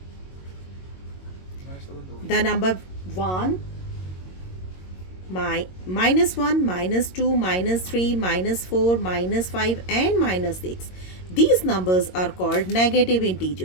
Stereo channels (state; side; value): late; right; 22 ms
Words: The number 1, -1, -2, -3, -4, -5 and -6. These numbers are called negative